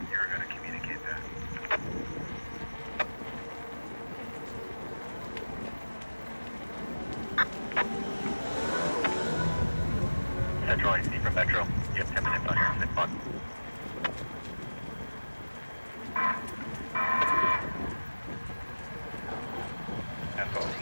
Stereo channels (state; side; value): inverted; both; correlation -1.00